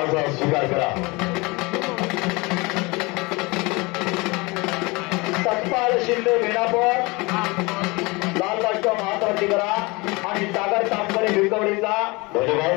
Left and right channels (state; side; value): quieter; right; 25.4 dB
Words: स्वीकार करा. सत्पाल शिंदे वेणापूर लाल राष्ट्र महात्मावरती करा आणि सागर तांबरे भिकवडीचा